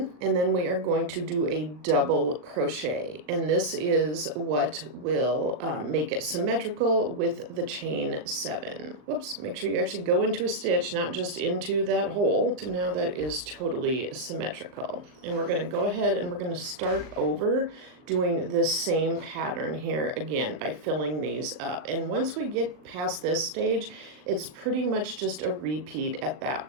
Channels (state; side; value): late; left; 39 ms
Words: and then we are going to do a double crochet. And this is what will make it symmetrical with the chain 7. Whoops, make sure you actually go into a stitch, not just into that hole. So now that is totally symmetrical. And we're going to go ahead and we're going to start over doing this same pattern here again by filling these up. And once we get past this stage, it's pretty much just a repeat at that